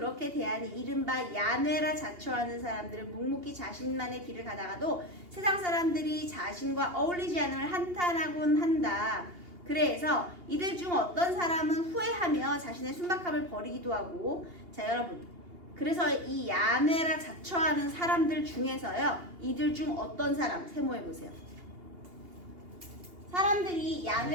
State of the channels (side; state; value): left; late; 2.8 ms